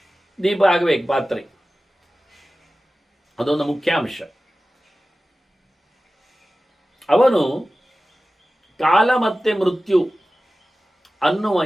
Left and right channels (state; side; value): normal; both; correlation 0.95